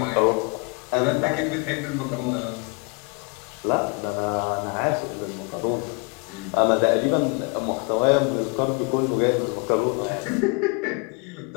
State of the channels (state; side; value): quieter; right; 31.3 dB